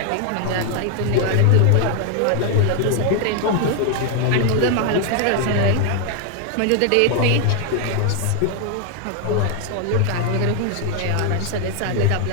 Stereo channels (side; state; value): both; different; correlation 0.00